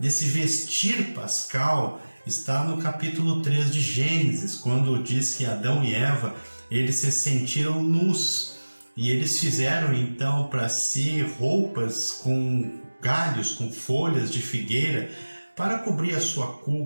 vestir pascal, está no capítulo 3 de Gênesis, quando diz que Adão e Eva, eles se sentiram nus, e eles fizeram então para si roupas com galhos, com folhas de figueira, para cobrir a sua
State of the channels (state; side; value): inverted; both; correlation -1.00